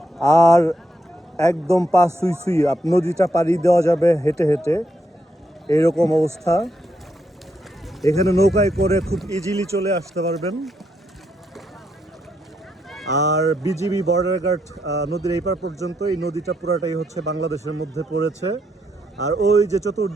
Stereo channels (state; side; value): normal; both; correlation 0.79